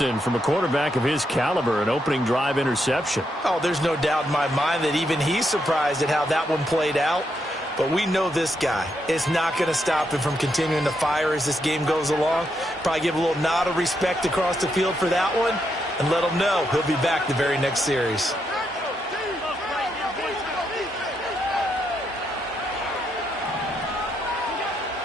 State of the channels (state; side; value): normal; both; correlation 0.80